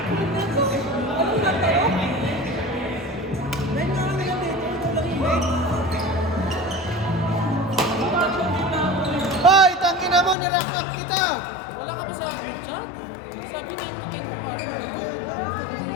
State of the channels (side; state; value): right; drops out; at 10.4 s